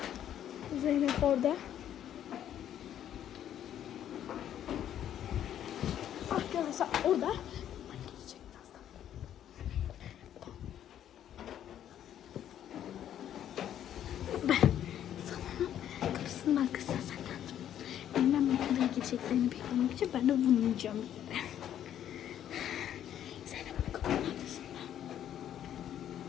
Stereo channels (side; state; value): right; quieter; 10.6 dB